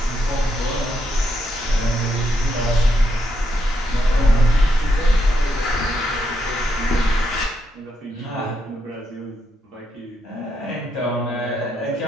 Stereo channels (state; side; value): normal; both; correlation 0.79